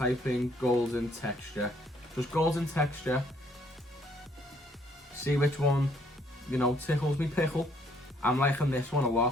in golden texture. Just golden texture. See which one, you know, tickles me pickle. I'm liking this one a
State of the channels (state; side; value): normal; both; correlation 0.65